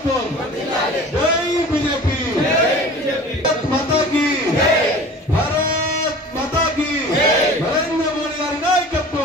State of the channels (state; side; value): normal; both; correlation 0.41